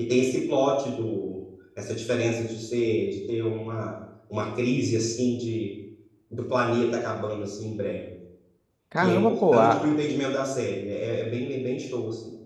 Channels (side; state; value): both; identical; correlation 1.00